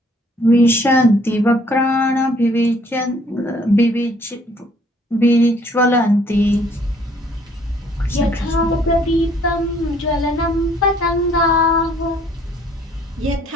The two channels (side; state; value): both; normal; correlation 0.61